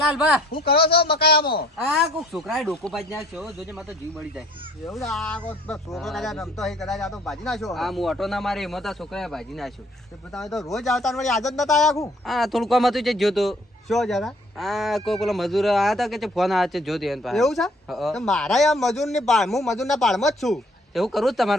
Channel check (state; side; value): normal; both; correlation 0.59